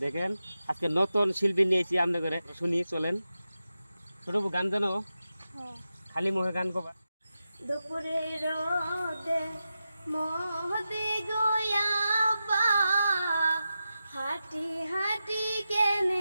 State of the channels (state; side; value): inverted; both; correlation -0.91